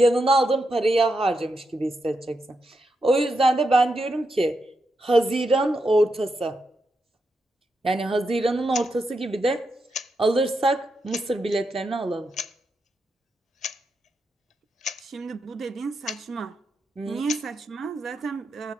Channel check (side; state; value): both; normal; correlation 0.84